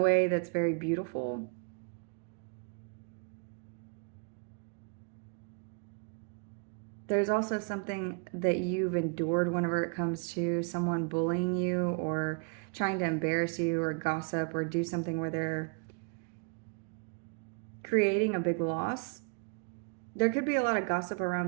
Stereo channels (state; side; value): quieter; left; 37.8 dB